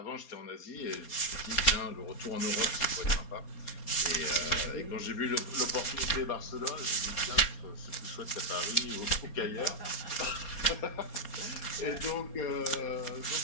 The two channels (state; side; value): late; right; 4.3 ms